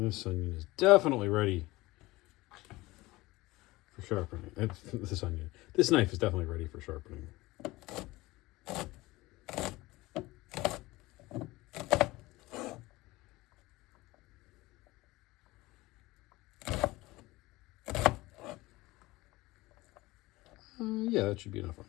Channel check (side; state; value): right; quieter; 19.9 dB